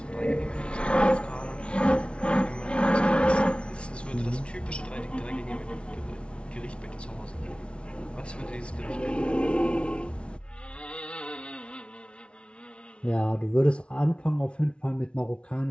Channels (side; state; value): right; late; 0.058 ms